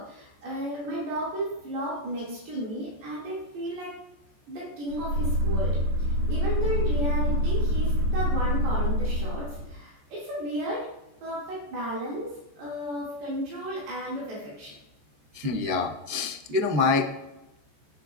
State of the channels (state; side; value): late; left; 14 ms